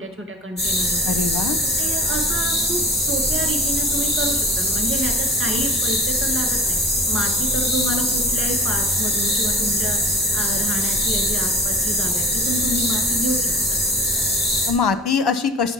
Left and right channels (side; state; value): both; normal; correlation 0.39